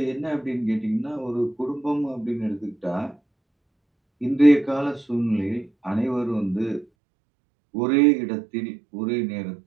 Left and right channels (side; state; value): left; drops out; at 6.9 s